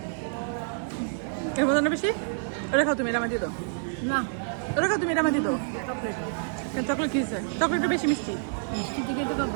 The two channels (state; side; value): silent; left; digital silence